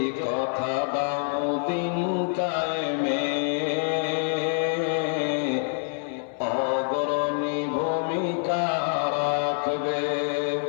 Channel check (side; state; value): right; silent; 61 dB below the other